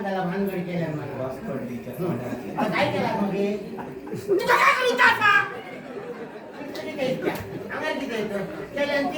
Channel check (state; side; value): identical; both; correlation 1.00